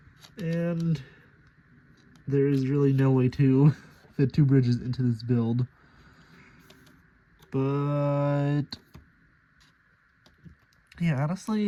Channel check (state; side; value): identical; both; correlation 1.00